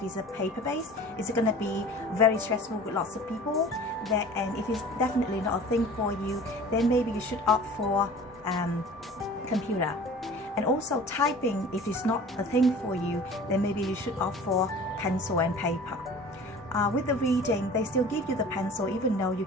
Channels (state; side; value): normal; both; correlation 0.43